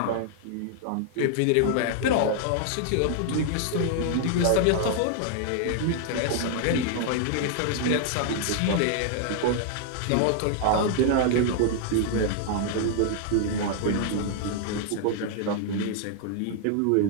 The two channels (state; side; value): different; both; correlation 0.00